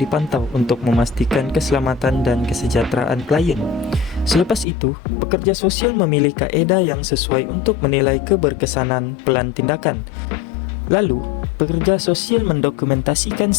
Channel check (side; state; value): right; drops out; at 4.7 s